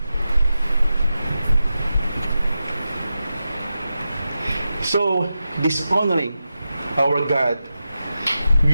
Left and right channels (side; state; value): both; inverted; correlation -0.90